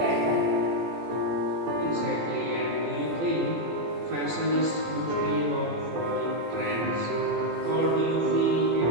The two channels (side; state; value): left; late; 18 ms